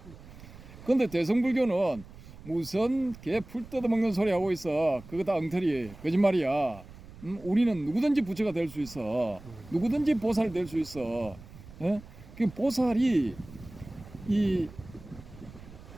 근데 대성불교는 무슨 개 풀 뜯어먹는 소리 하고 있어. 그거 다 엉터리 거짓말이야. 우리는 누구든지 부처가 될 수 있어. 누구든지 보살 될 수 있어. 예? 그 보살이 이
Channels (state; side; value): noise; right; rumble, 18 dB below the sound